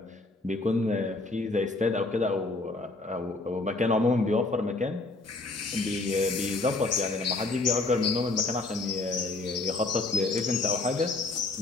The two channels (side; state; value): right; quieter; 3.2 dB